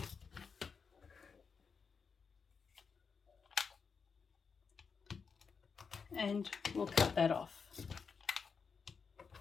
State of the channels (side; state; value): right; quieter; 5.6 dB